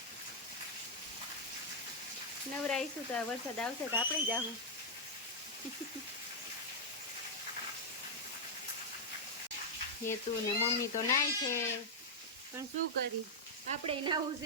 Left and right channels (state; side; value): normal; both; correlation -0.05